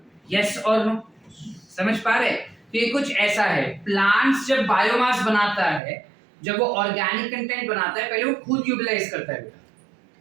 यस और नो? समझ पा रहे? तो ये कुछ ऐसा है. प्लांट्स जब बायोमास बनाता है, जब वो ऑर्गेनिक कंटेंट बनाता है, पहले वो खुद यूटिलाइज करता है.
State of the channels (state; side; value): drops out; left; at 5.8 s